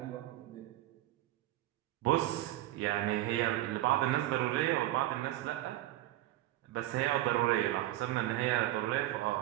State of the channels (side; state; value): left; quieter; 15.5 dB